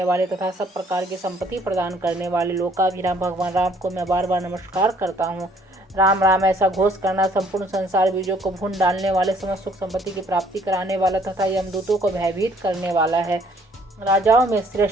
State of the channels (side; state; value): both; normal; correlation 0.62